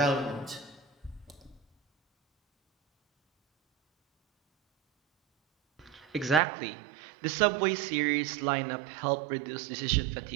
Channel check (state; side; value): drops out; left; at 6.4 s